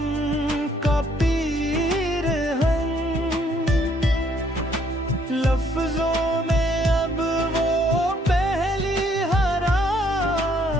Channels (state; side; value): normal; both; correlation 0.66